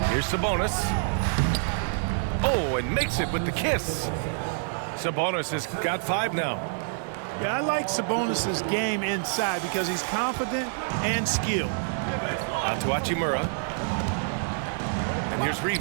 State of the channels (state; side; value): silent; left; digital silence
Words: Here's Sabonis. Oh, and makes it with the kiss. Sabonis has got 5 now. Yeah, I like Sabonis' game inside because he's confident and skilled. Out to Hachimura. And here's